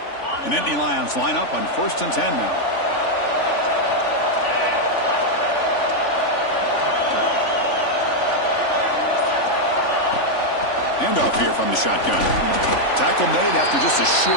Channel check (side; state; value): right; late; 3.5 ms